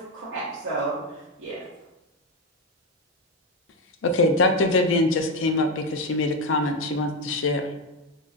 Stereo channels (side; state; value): both; normal; correlation 0.10